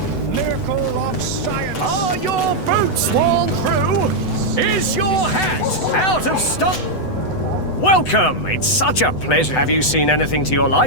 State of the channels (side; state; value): right; late; 8.0 ms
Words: miracle of science. Are your boots worn through? Is your hat out of stock? Welcome! It's such a pleasure. Have you seen anything to your